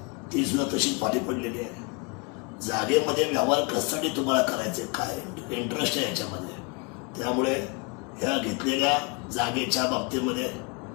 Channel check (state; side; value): quieter; right; 31.0 dB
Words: ती सुद्धा तशीच पाठी पडलेली आहे. जागेमध्ये व्यवहार कशासाठी तुम्हाला करायचे, काय इंटरेस्ट आहे याच्यामध्ये. त्यामुळे ह्या घेतलेल्या जागेच्या बाबतीमध्ये